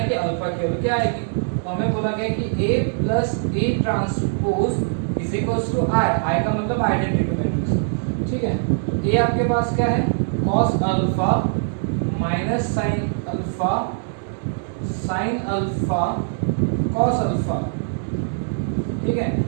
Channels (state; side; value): silent; left; 64 dB below the other